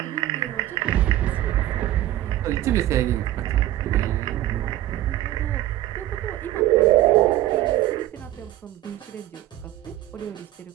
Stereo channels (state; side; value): quieter; left; 14.4 dB